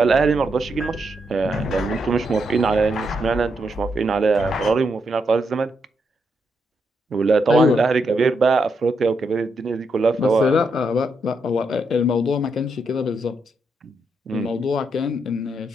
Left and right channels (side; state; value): both; normal; correlation 0.80